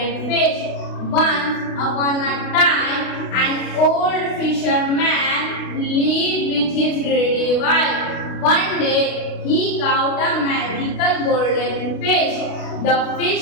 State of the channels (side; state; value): right; late; 32 ms